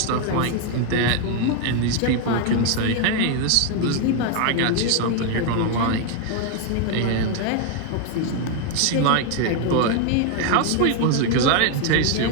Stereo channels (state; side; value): different; both; correlation 0.01